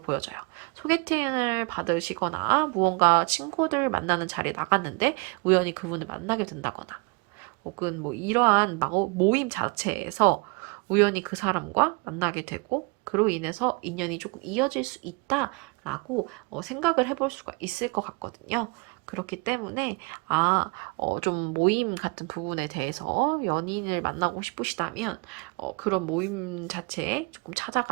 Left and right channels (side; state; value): left; quieter; 30.4 dB